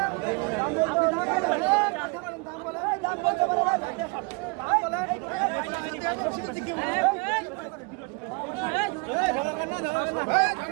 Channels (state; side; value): quieter; left; 30.0 dB